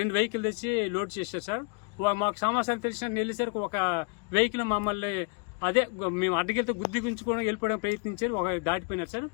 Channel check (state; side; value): quieter; right; 33.7 dB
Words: వెహికల్ తెచ్చి లోడ్ చేశారు సార్. మాకు సమాచారం తెలిసిన వెళ్ళేసరికి ఒక వెహికల్ మమ్మల్ని అదే మేము అడ్డగిలితో గుద్దిగుంచుకోవడం వెళ్ళిపోవడం ప్రయత్నించారు. ఒక దాటిపోయినారు సార్.